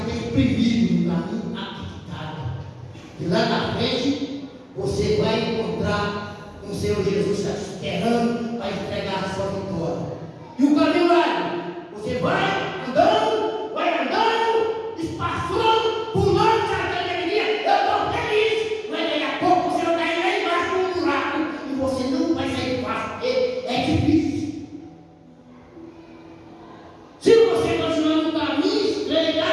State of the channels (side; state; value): both; identical; correlation 1.00